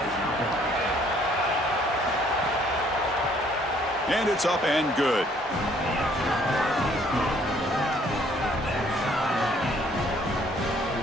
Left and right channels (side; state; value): both; normal; correlation 0.62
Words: And it's up and good.